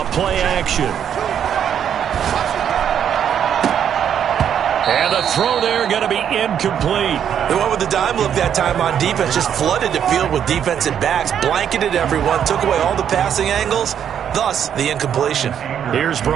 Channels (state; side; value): quieter; left; 8.9 dB